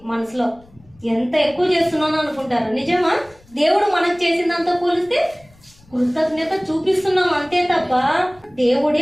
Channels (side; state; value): left; noise; rumble, 28 dB below the sound